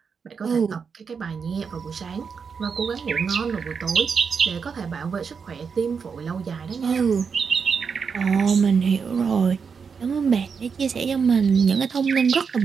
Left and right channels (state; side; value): quieter; left; 5.9 dB